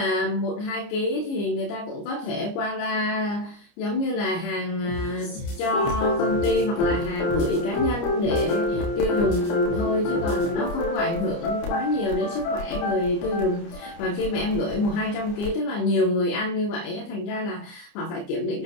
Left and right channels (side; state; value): right; late; 29 ms